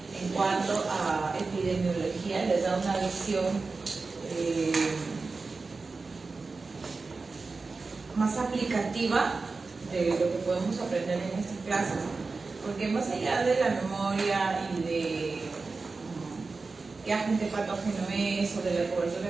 en cuanto a epidemiología. Les da una visión más aplicativa de lo que podemos aprender en estas clases, porque más allá de la memoria y de qué agente patógeno es o de la cobertura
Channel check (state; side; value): quieter; left; 4.0 dB